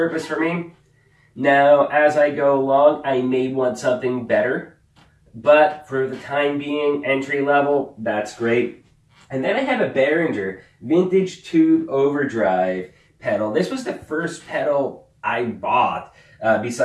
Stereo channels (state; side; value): identical; both; correlation 1.00